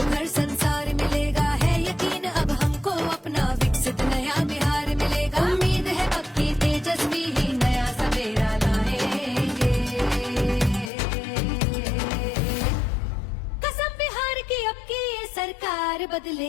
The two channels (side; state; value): right; drops out; at 10.9 s